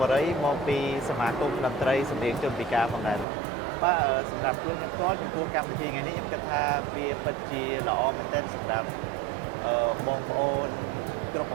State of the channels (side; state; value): left; drops out; at 3.2 s